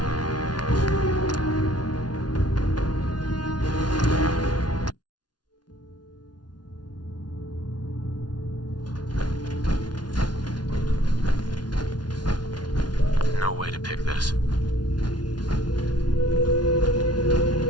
No way to pick this.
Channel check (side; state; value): right; late; 0.70 ms